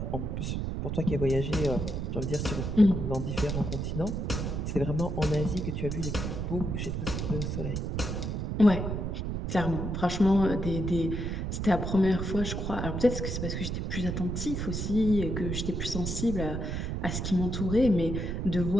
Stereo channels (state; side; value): noise; right; rumble, 2 dB below the sound